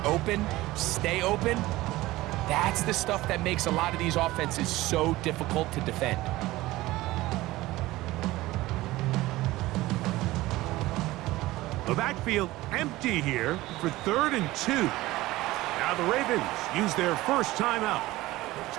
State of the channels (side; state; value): left; quieter; 18.1 dB